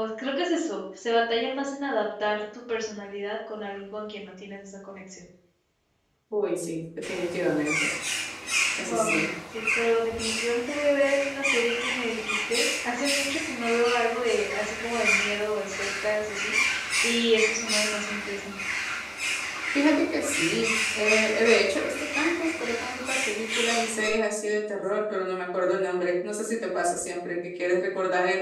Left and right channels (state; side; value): identical; both; correlation 1.00